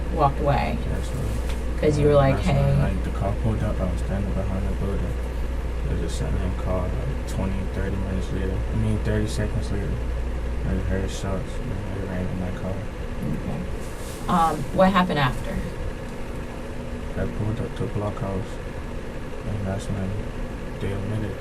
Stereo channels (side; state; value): both; identical; correlation 1.00